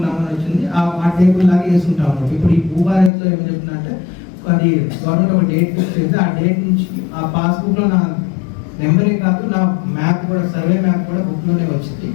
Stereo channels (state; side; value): drops out; right; at 3.1 s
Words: వచ్చింది, ఆ టేబుల్ లాగా వేసుకుంటాం అన్నమాట. ఇప్పుడు ఈ భూభారత్లో ఏం చెప్తుందంటే అది గవర్నమెంట్ ఒక డేట్ ఫిక్స్ చేస్తే ఆ డేట్ నుంచి ఆ పాస్బుక్లో నా నెంబరే కాదు నా మ్యాప్ కూడా, సర్వే మ్యాప్ కూడా బుక్లోనే వచ్చింది.